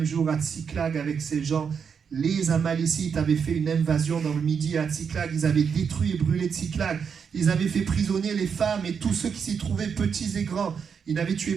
jour à Tsiklag avec ses gens, les Amalécites avaient fait une invasion dans le Midi à Tsiklag, ils avaient détruit et brûlé Tsiklag, ils avaient fait prisonnier les femmes et tous ceux qui s'y trouvaient, petits et grands. Ils n'avaient tué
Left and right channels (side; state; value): left; quieter; 6.6 dB